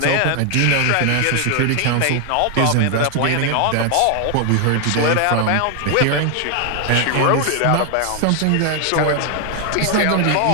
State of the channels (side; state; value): both; different; correlation 0.00